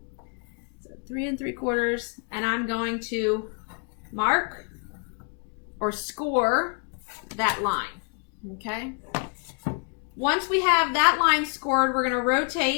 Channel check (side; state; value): right; quieter; 39.4 dB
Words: 3 3/4, and I'm going to mark or score that line. Okay. Once we have that line scored, we're going to